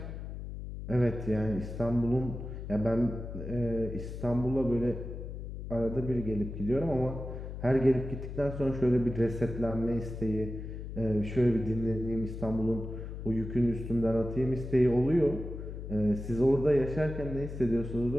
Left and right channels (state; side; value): noise; left; hum, 8 dB below the sound